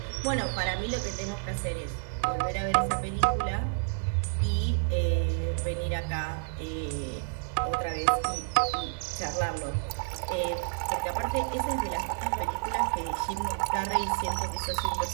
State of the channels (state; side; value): silent; left; digital silence